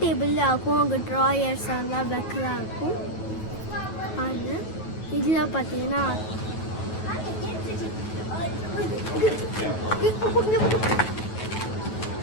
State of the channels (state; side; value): late; right; 9.3 ms